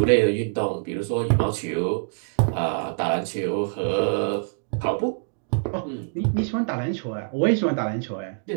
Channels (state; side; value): silent; left; digital silence